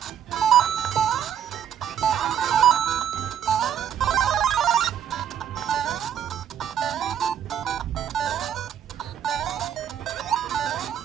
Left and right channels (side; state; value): left; quieter; 9.4 dB